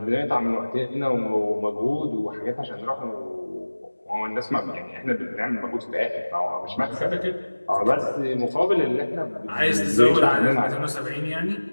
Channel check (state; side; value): inverted; both; correlation -1.00